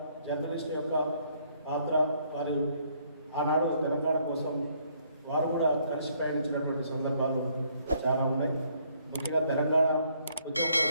జర్నలిస్టు యొక్క పాత్ర, వారు ఆనాడు తెలంగాణ కోసం వారు కూడా కలిసి ప్రయాణించినటువంటి సందర్భాలు చాలా ఉన్నాయి. ముఖ్యంగా తెలంగాణ ఉద్యమంలో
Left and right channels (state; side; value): inverted; both; correlation -0.67